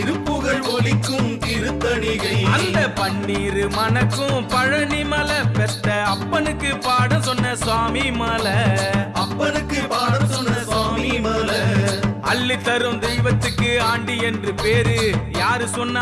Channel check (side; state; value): both; identical; correlation 1.00